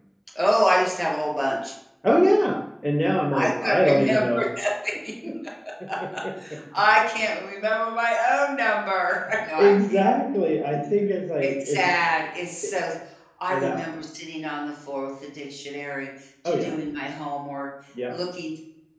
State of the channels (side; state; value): both; identical; correlation 1.00